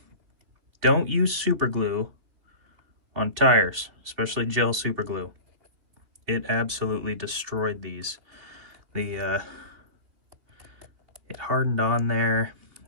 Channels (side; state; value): left; late; 2.7 ms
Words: Don't use super glue on tires, especially gel super glue. It absolutely destroyed these. It hardened on there.